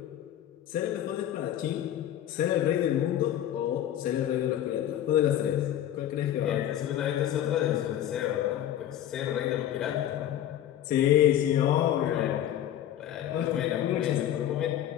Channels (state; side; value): quieter; right; 11.5 dB